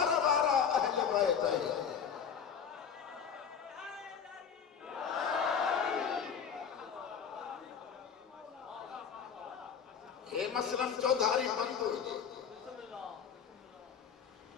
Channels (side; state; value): right; quieter; 7.2 dB